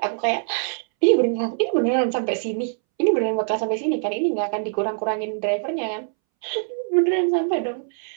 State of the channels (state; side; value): silent; left; 63 dB below the other